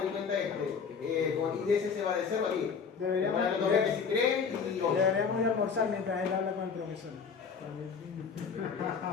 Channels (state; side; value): quieter; right; 5.9 dB